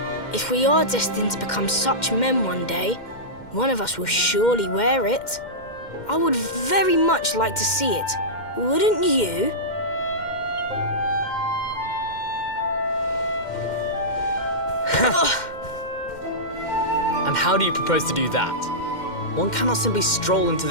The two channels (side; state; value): right; late; 2.1 ms